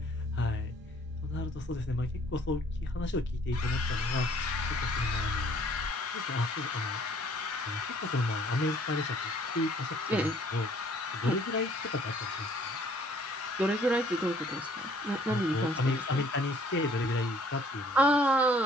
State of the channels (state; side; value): normal; both; correlation 0.59